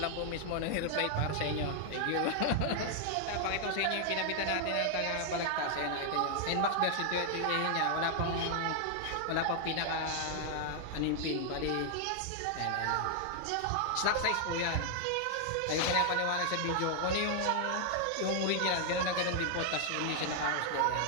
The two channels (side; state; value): both; different; correlation 0.00